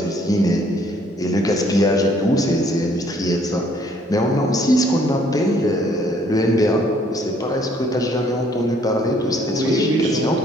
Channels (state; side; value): normal; both; correlation 0.63